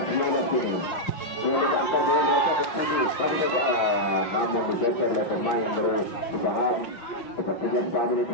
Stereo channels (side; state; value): right; late; 5.6 ms